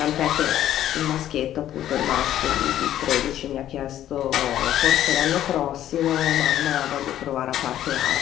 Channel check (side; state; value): right; quieter; 12.0 dB